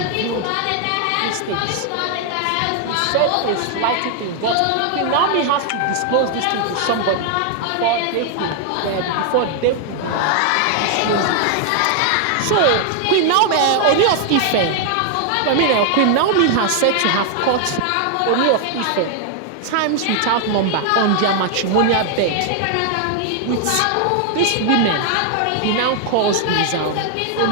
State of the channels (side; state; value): both; different; correlation 0.00